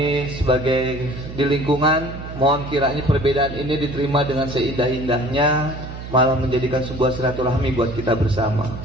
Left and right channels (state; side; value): noise; right; hum, 10 dB below the sound